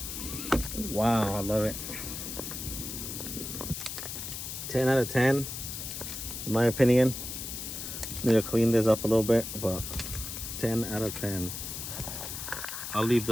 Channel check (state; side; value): noise; left; hiss, 7 dB below the sound